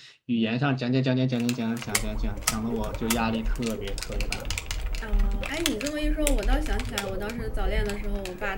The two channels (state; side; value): identical; both; correlation 1.00